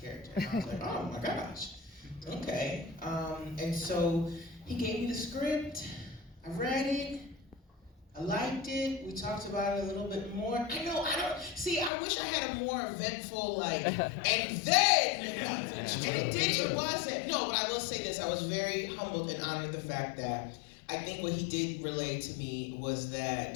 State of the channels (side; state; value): right; drops out; at 11.9 s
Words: And I was like, oh my gosh, okay. And so he gave me the script, I read it, I liked it, we talked about it a little bit more. I wish I had a more eventful, and then, it wasn't. No, but I will say this, I was very humbled and honored the fact that I think what he did relay to me was